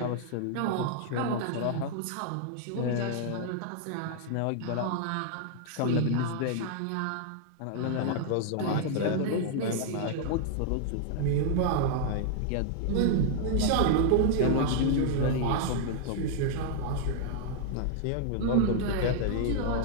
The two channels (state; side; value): different; both; correlation 0.00